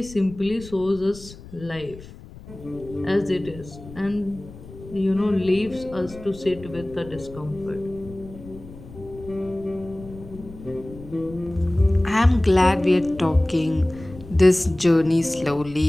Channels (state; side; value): noise; left; rumble, 17 dB below the sound